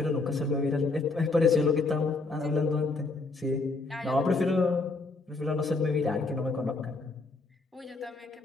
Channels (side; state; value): right; quieter; 3.6 dB